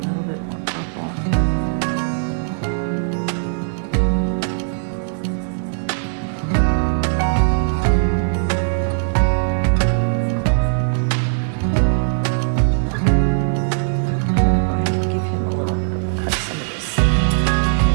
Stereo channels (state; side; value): silent; left; digital silence